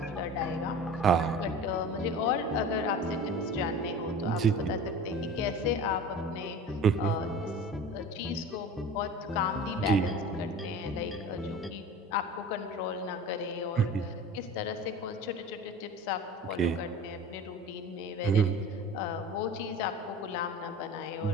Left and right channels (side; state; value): both; normal; correlation 0.37